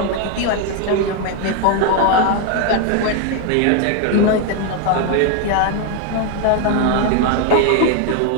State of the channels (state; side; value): different; both; correlation 0.01